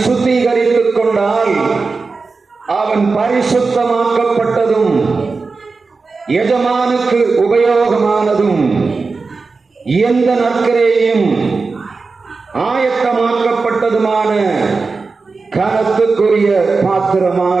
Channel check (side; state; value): left; quieter; 4.2 dB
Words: சுத்திகரித்துக் கொண்டால் அவன் பரிசுத்தமாக்கப்பட்டதும் எஜமானுக்கு உபயோகமானதும் எந்த நற்கிரையும் ஆயத்தமாக்கப்பட்டதுமான கனத்துக்குரிய